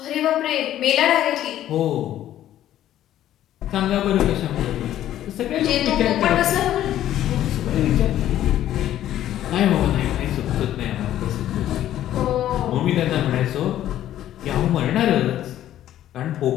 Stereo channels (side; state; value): right; quieter; 12.4 dB